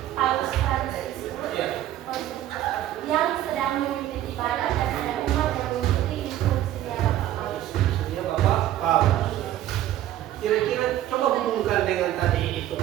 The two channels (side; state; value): left; quieter; 13.0 dB